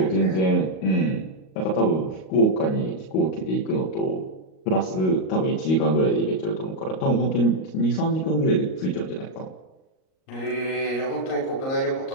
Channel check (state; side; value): late; right; 38 ms